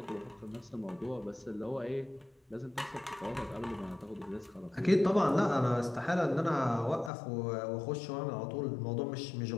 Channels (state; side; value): drops out; right; at 7.1 s